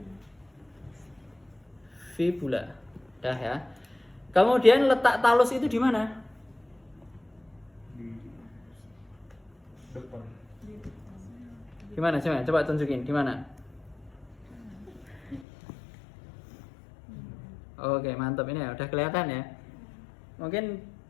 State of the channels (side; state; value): right; drops out; at 15.5 s